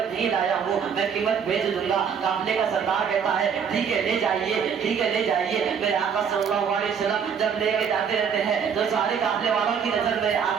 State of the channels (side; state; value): left; quieter; 7.0 dB